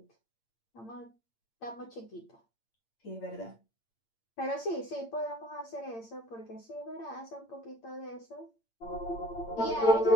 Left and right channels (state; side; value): late; right; 8.8 ms